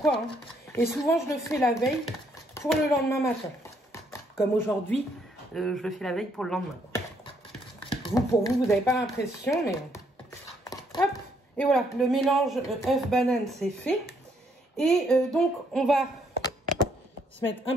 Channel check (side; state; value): both; normal; correlation 0.70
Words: Hein. Et souvent, je le fais la veille pour le lendemain matin. Comme aujourd'hui, je le fais la veille pour le lendemain. Pour vous, vous n'avez pas l'impression, mais... Hop. Et voilà, le mélange œuf-banane, c'est fait. Et donc, on va se mettre un